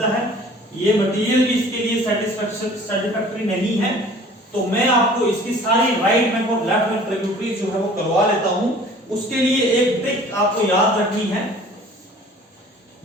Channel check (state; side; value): normal; both; correlation 0.49